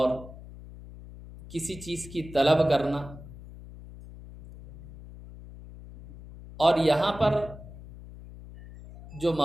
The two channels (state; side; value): noise; left; hum, 16 dB below the sound